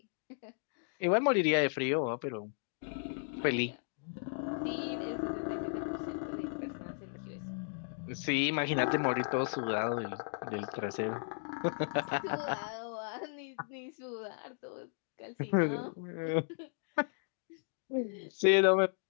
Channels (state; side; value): silent; right; digital silence